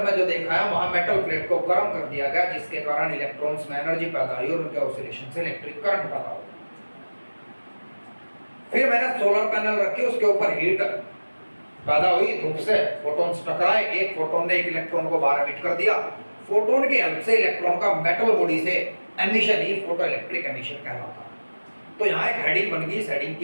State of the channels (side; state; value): both; inverted; correlation -1.00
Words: जो देखा है वहां मेटल प्लेट को गर्म कर दिया गया, जिसके कारण इलेक्ट्रॉन्स में एनर्जी पैदा हुई और उनके ऑसिलेशन से इलेक्ट्रिक करंट पैदा हुआ। फिर मैंने सोलर पैनल रखे, उसके ऊपर हीट पैदा हुई, धूप से फोटॉन्स टकराए, एक फोटोन ने एक इलेक्ट्रॉन को बाहर एमिट कर दिया। फोटोन की हेल्प से इलेक्ट्रॉन का मेटल बॉडी से एमिशन ही फोटो इलेक्ट्रिक एमिशन कहलाता है। तो यहाँ एक हेडिंग बन गई, इस हेडिंग